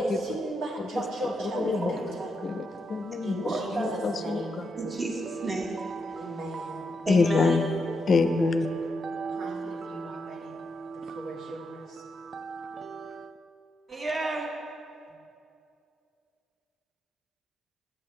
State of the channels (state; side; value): normal; both; correlation 0.83